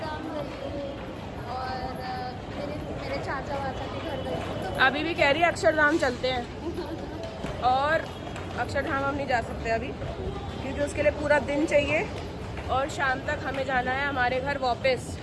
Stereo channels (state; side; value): identical; both; correlation 1.00